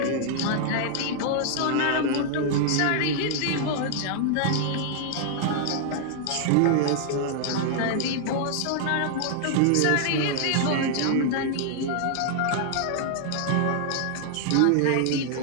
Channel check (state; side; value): different; both; correlation 0.00